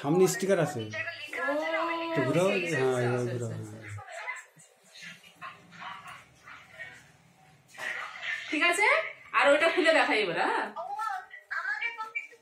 সামনে স্টিকার আছে, জায়গা লেখা আছে না, ওই তো ঘুরাও, সেই, সেই, হ্যাঁ সেই, এবার সেই, ঘুরাও, সেই। হ্যাঁ। ঠিক আছে, আর ওইটা খুলে দেখাই এবার। হ্যাঁ, ও, আমাকে কপি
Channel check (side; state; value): both; identical; correlation 1.00